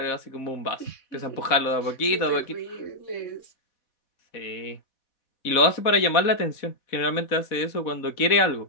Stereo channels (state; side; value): late; right; 4.1 ms